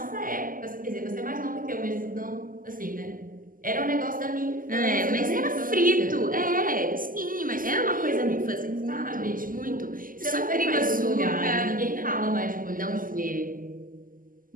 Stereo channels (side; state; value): left; late; 0.41 ms